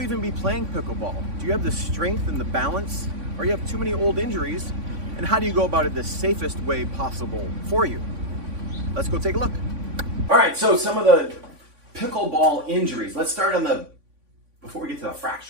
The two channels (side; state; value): left; late; 3.5 ms